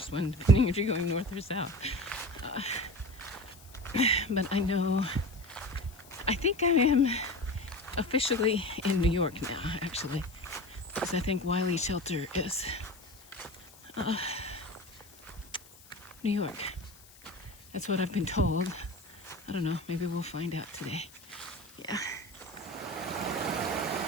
one, depending if you're going north or south. But I think I am officially in New York now, actually, because I think Wiley Shelter is New York. That's what I've been told. I don't know, maybe we'll find out today. Yeah.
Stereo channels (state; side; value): noise; left; hiss, 23 dB below the sound